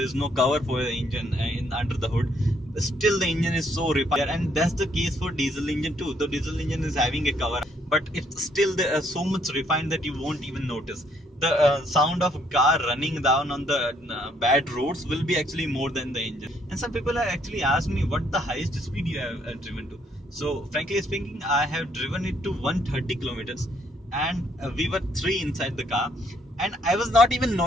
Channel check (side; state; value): both; normal; correlation 0.68